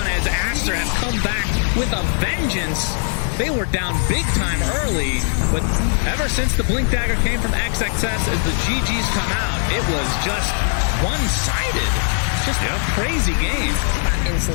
as Aster have come back with a vengeance. They were down big time early, but ever since the Blink Dagger came from XXS as the GGs come out, it was just one-sided. Just a crazy game.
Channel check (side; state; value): right; silent; 55 dB below the other